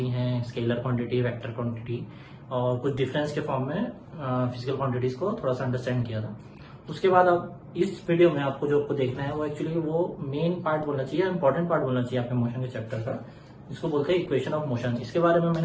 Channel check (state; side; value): identical; both; correlation 1.00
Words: हैं, स्केलर क्वांटिटी, वेक्टर क्वांटिटी, और कुछ डिफरेंस के फॉर्म में फिजिकल क्वांटिटीज को थोड़ा सा अंडरस्टैंड किया था। उसके बाद अब इस वीडियो में आपको जो देखना है वो एक्चुअली वो मेन पार्ट बोलना चाहिए, इंपॉर्टेंट पार्ट बोलना चाहिए आपके मोशन के चैप्टर का, जिसको बोलते हैं इक्वेशन ऑफ मोशन। इसके बारे में